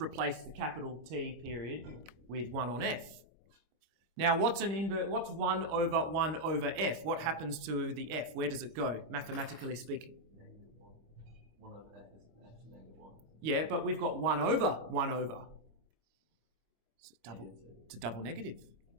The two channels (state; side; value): late; left; 25 ms